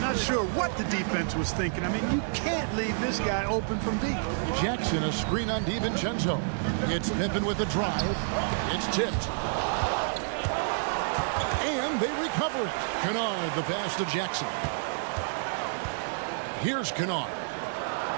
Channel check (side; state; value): left; silent; 59 dB below the other